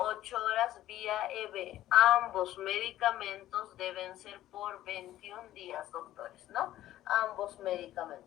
horas vía EB. Ambos medicamentos deben ser por 21 días, doctores, ¿no? Ambos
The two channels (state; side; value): quieter; right; 13.8 dB